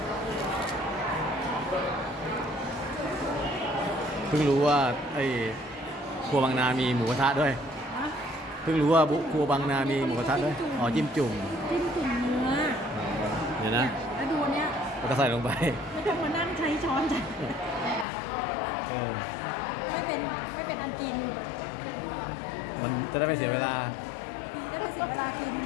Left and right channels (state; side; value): drops out; right; at 18.1 s